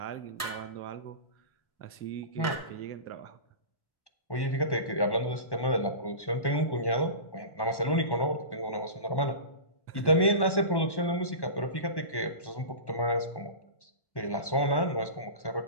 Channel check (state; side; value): late; right; 1.1 ms